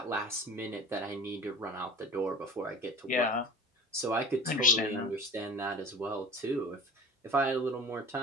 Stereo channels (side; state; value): both; normal; correlation 0.39